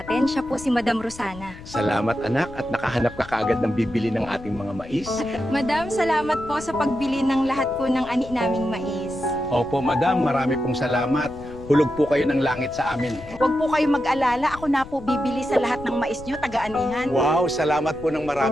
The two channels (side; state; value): left; noise; rumble, 17 dB below the sound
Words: Siya po si Madam Rosana. Salamat anak at nakahanap ka kaagad ng bibili ng ating mga mais. Madam, salamat po sa pagbili ng lahat po ng ani naming mais. Opo madam, marami pong salamat. Hulog po kayo ng langit sa amin. Huwag po kayo mag-alala, ako na po bibili sa lahat ng mais nyo, taga-anihan. Wow, salamat po ng